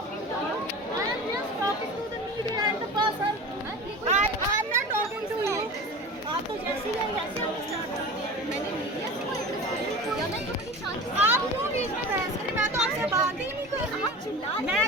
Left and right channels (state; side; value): normal; both; correlation 0.34